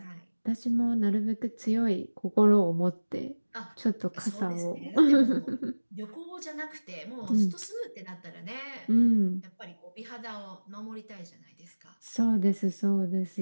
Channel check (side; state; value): both; inverted; correlation -1.00